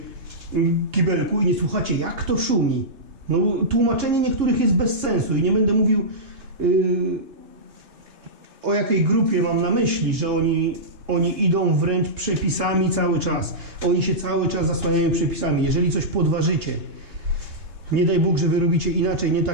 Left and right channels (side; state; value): left; late; 2.9 ms